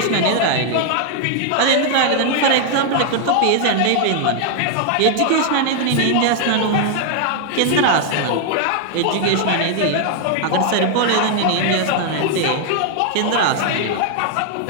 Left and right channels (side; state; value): both; different; correlation 0.00